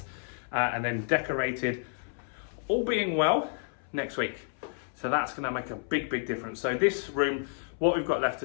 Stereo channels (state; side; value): silent; right; 58 dB below the other